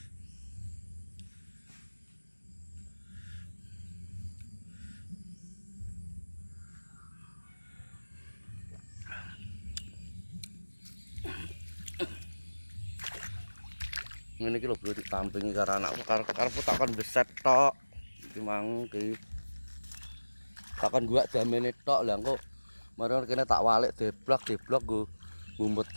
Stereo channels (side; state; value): both; inverted; correlation -1.00